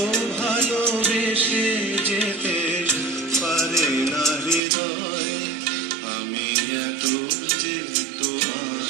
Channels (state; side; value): drops out; left; at 4.6 s